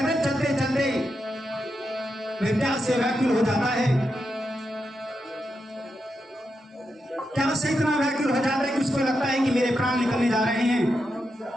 चलते चलते विद्या से व्याकुल हो जाता है। क्या से इतना व्याकुल हो जाता है कि उसको लगता है कि मेरे प्राण निकलने जा रहे हैं।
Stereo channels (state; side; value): normal; both; correlation 0.86